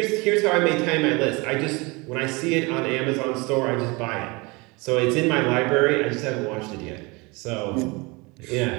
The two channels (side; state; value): left; quieter; 26.4 dB